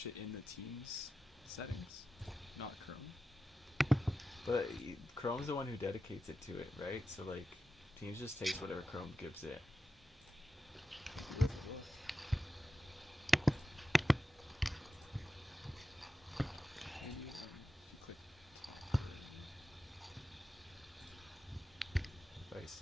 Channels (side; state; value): both; normal; correlation 0.91